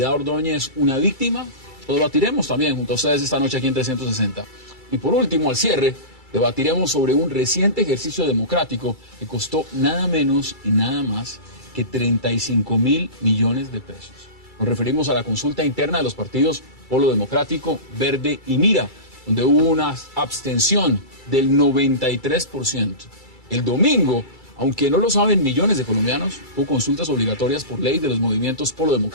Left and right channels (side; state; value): right; late; 2.3 ms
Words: Ordóñez una víctima? Lo debatiremos también junto a ustedes esta noche aquí en 360. Y por último, al cierre, debatiremos sobre un reciente ejercicio democrático que costó nada menos y nada más que 35.000 millones de pesos. Nos referimos a la consulta interna de los partidos Polo Democrático, Verde y Mira, donde hubo una abstención del 93%. El domingo, aunque no lo saben millones de colombianos, hubo consultas obligatorias por ley de los movimientos Polo